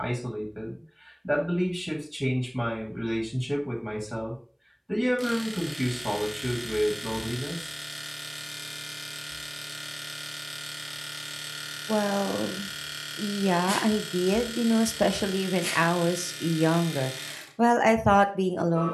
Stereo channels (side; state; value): both; identical; correlation 1.00